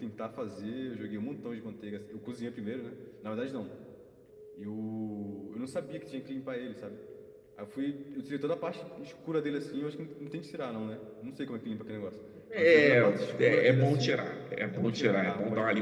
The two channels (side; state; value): both; identical; correlation 1.00